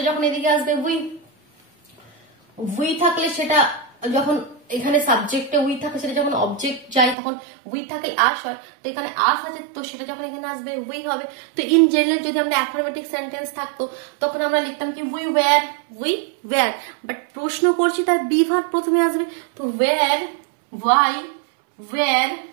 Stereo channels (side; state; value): left; drops out; at 7.2 s